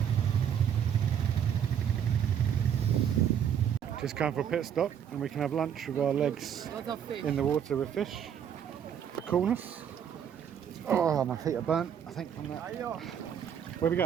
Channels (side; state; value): left; quieter; 8.7 dB